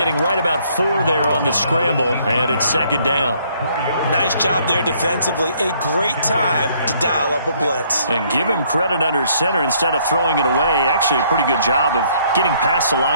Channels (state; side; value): inverted; both; correlation -0.65